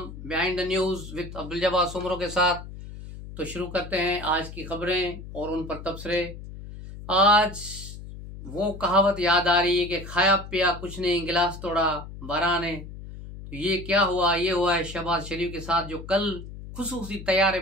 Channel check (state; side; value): noise; left; hum, 12 dB below the sound